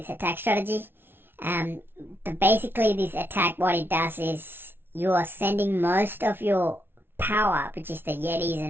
attack strategy. But basically this attack, what it does is you are sending most of your power, which is the Yetis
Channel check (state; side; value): late; left; 0.11 ms